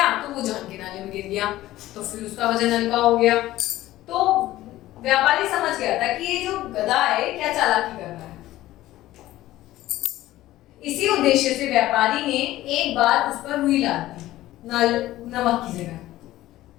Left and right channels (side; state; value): right; quieter; 15.6 dB